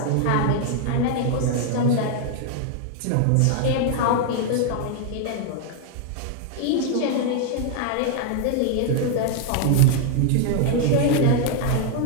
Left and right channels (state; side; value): different; both; correlation 0.00